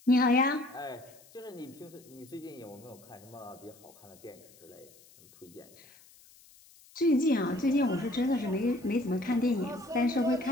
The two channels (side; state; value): left; noise; hiss, 25 dB below the sound